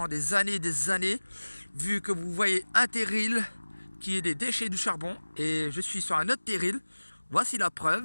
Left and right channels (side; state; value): both; inverted; correlation -1.00